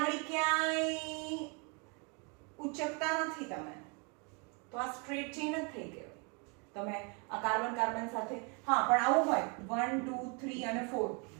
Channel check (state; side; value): quieter; left; 33.8 dB